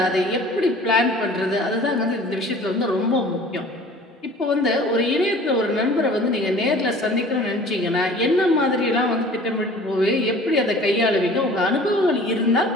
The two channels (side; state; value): both; normal; correlation 0.46